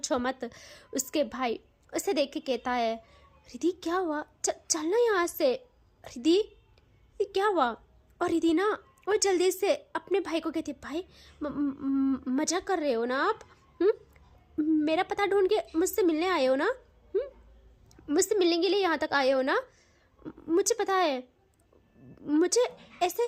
मत। उसके भाई उसे देख के कहता है, रिद्धि क्या हुआ, चलना यहाँ से। रिद्धि क्या हुआ। और रिद्धि ना वो जल्दी से अपने भाई को कहती, भाई मजाक कर रहे हो ना आप। मेरा पता ढूंढ के मुझसे मिलने आए हो ना। मुझसे मिलने के लिए यहाँ तक आए हो ना। मुझे पता है, मुझे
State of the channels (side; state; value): both; identical; correlation 1.00